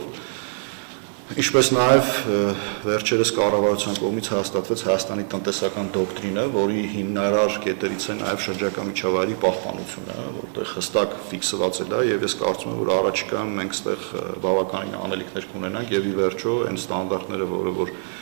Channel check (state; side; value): silent; left; 59 dB below the other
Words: Ինչպես նաև վերջերս կառավարության կողմից հաստատվեց Հայաստանի տնտեսական դոկտրինը, որի հիմնարար կետերից է նաև շրջակա միջավայրի պահպանությունը, որտեղ հստակ ֆիքսված է դա եւ ես կարծում եմ, որ առաջիկայում մենք այստեղ բավականին անելիքներ կունենանք եւ ի վերջո այն ստանդարտները, որը որ